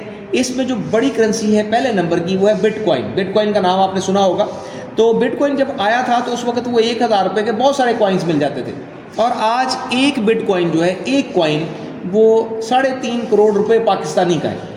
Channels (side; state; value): both; identical; correlation 1.00